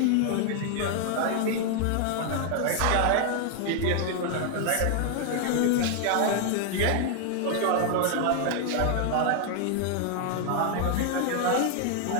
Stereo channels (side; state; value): both; different; correlation 0.00